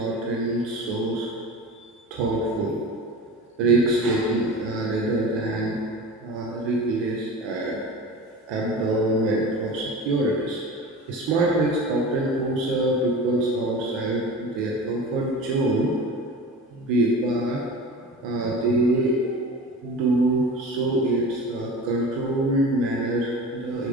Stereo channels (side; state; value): both; normal; correlation 0.34